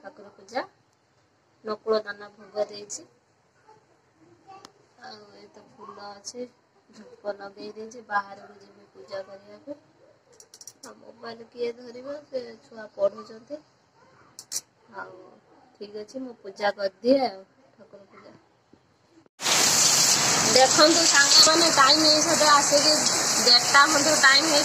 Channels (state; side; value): identical; both; correlation 1.00